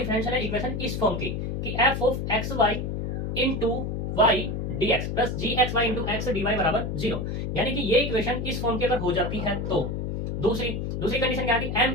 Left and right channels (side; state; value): left; noise; hum, 3 dB below the sound